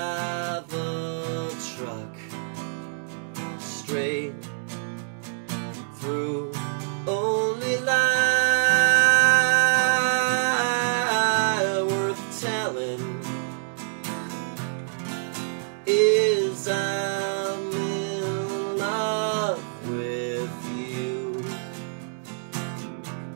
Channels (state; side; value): silent; left; digital silence